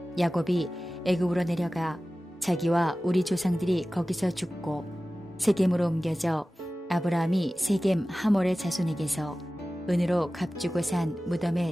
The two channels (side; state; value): both; normal; correlation 0.96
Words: 야곱이 애굽으로 내려가 자기와 우리 조상들이 거기서 죽고 세겜으로 옮겨져 아브라함이 세겜 하몰의 자손에게서 은으로 값주고 산